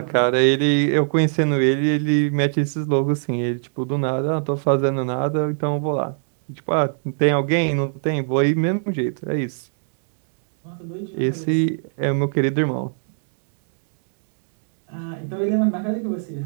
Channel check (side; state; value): left; silent; digital silence